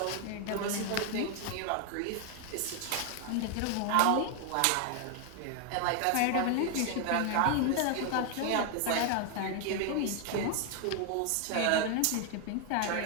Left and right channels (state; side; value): different; both; correlation 0.00